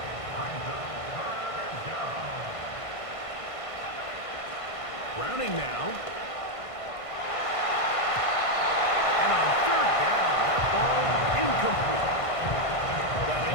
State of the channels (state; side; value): late; right; 1.5 ms